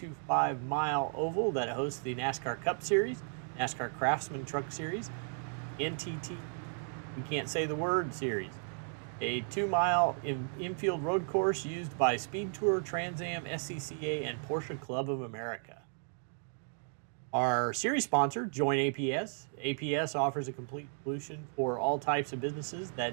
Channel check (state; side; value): silent; left; 55 dB below the other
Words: oval that hosts the NASCAR Cup Series, NASCAR Craftsman Truck Series, NTT, we can't say the word, series. A 2-mile infield road course used by Speed Tour, Trans Am, SCCA, and Porsche Club of America. Our series sponsor, Join APS. APS offers a complete solution for all types of businesses